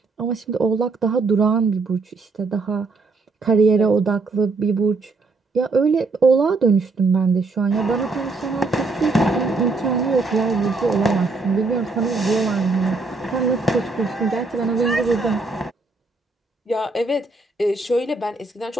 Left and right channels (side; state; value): left; quieter; 3.7 dB